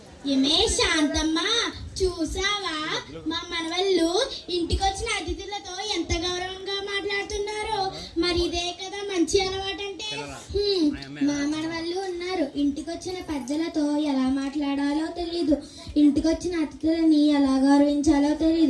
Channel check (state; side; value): identical; both; correlation 1.00